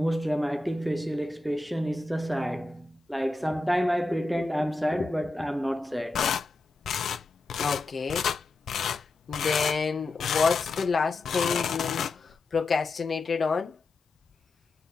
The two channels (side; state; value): right; quieter; 3.1 dB